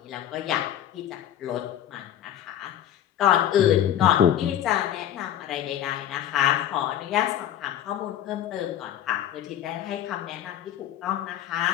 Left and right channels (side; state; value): right; quieter; 10.9 dB